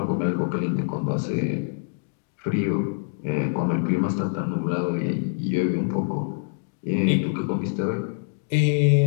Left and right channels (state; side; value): silent; right; digital silence